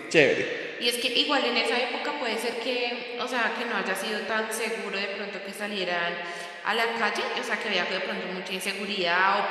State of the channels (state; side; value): identical; both; correlation 1.00